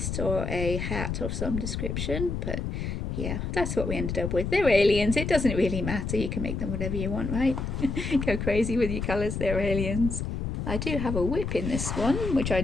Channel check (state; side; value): noise; left; rumble, 3 dB below the sound